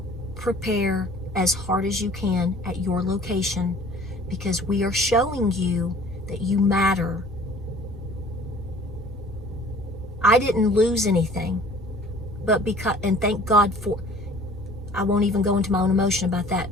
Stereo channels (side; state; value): both; normal; correlation 0.49